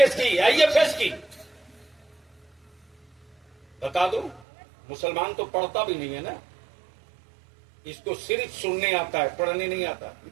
की, आईएफएस की। बता दो, मुसलमान तो पढ़ता भी नहीं है ना, इसको सिर्फ सुनने आता है, पढ़ने नहीं आता।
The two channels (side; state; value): left; drops out; at 4.4 s